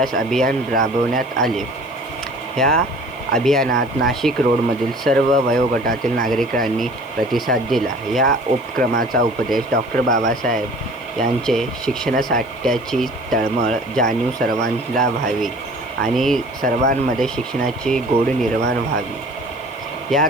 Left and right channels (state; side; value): noise; left; hiss, 28 dB below the sound